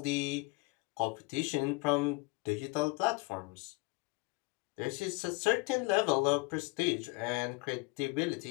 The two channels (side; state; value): right; quieter; 26.2 dB